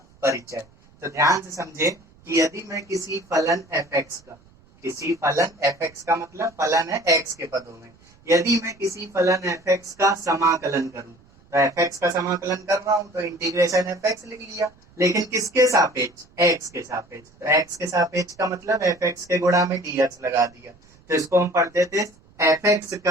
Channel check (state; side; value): noise; right; rumble, 29 dB below the sound